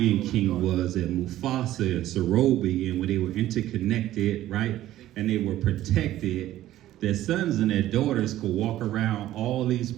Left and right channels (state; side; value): quieter; left; 13.9 dB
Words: King was that Mufasa and Sorobi, and when they were interconnected, right, and they were protected, their sons and their daughters could walk around all these